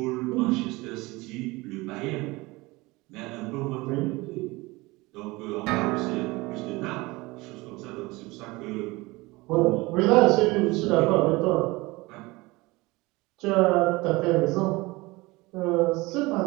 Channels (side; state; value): left; quieter; 22.3 dB